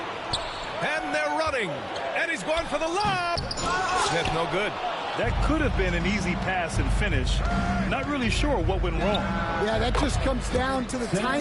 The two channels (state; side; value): identical; both; correlation 1.00